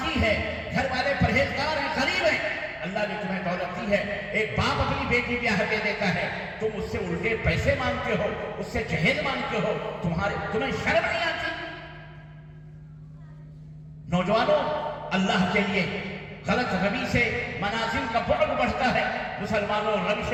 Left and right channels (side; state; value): both; identical; correlation 1.00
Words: ہے، گھر والے پرہیزگار ہیں، غریب ہیں. اللہ نے تمہیں دولت دی ہے. ایک باپ اپنی بیٹی بیاہ دے دیتا ہے، تم اس سے الٹے پیسے مانگتے ہو، اس سے جہیز مانگتے ہو. تمہیں شرم نہیں آتی؟ نوجوانوں، اللہ کے لیے غلط روی سے منازل کا بعد بڑھتا ہے. مسلمانوں، روش